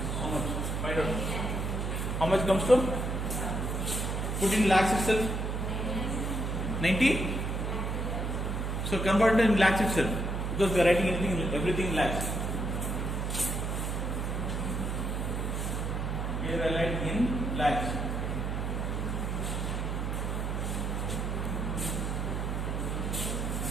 How much? Find out. How much comes to? Put in lakhs itself. 90. So convert it in lakhs itself, because we are writing everything in lakhs. Here I write in lakhs.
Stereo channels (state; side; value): noise; right; hum, 1 dB below the sound